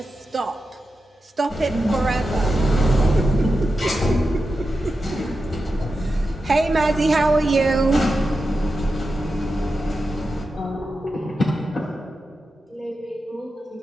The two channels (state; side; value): normal; both; correlation 0.90